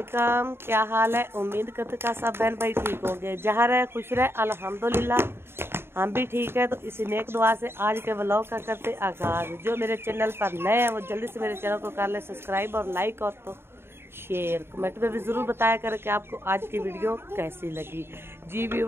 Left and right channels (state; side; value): late; left; 0.11 ms